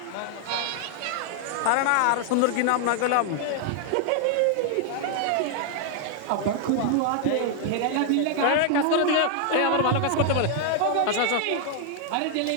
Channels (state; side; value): different; both; correlation 0.00